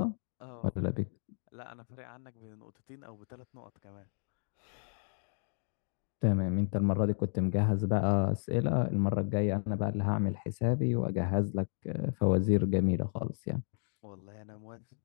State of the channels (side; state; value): right; silent; digital silence